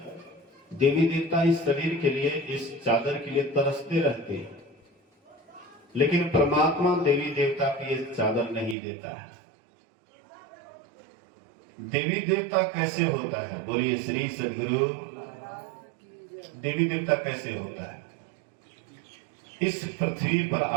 देवी देवता इस शरीर के लिए, इस चादर के लिए तरसते रहते हैं, लेकिन परमात्मा देवी देवता की ये चादर नहीं देता है। देवी देवता कैसे होता है? बोलिए श्री सद्गुरु। देवी देवता कैसे होता है? इस पृथ्वी पर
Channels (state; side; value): drops out; left; at 8.8 s